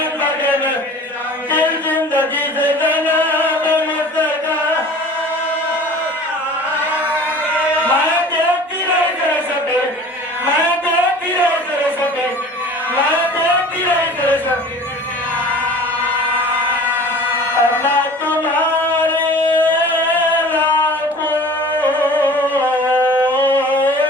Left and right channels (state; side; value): normal; both; correlation 0.43